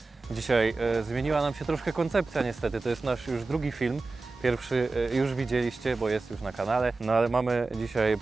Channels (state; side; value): quieter; left; 3.6 dB